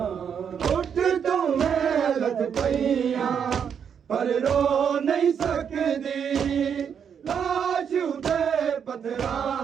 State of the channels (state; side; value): quieter; left; 7.6 dB